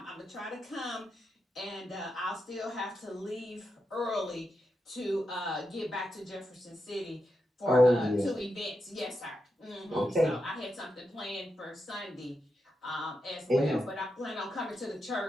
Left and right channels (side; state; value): both; normal; correlation 0.86